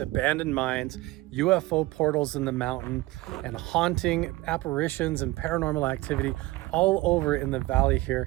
mines, UFO portals in the mountain, and haunting apparitions and paranormal activity all over in the valley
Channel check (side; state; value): left; quieter; 19.3 dB